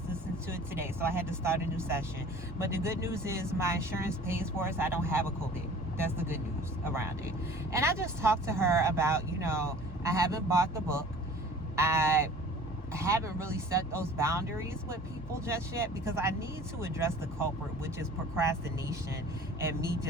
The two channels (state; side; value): normal; both; correlation 0.46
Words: listened to it today. So I had to start a new session. But the good news is my insurance pays for it, so I don't have a copay. That's the good news around it. And I just talked to her about, you know, I haven't bought the book. I haven't really set those boundaries with people just yet because I need to address the culprit, which is procrastination and me